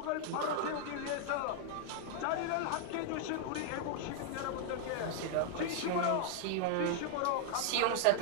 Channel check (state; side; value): different; both; correlation 0.00